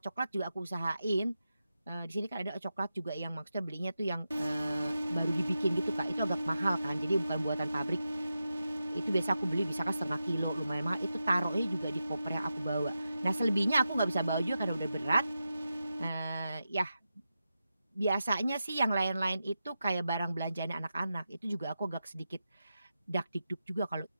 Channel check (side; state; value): both; inverted; correlation -0.90